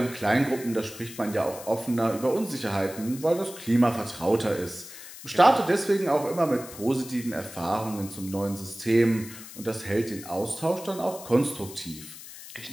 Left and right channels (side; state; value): left; noise; hiss, 15 dB below the sound